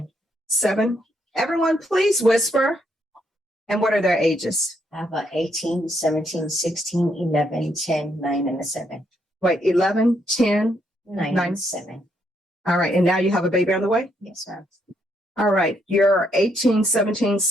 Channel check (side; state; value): both; normal; correlation 0.74